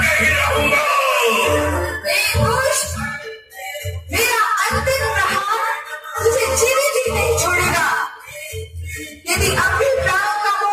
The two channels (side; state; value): both; identical; correlation 1.00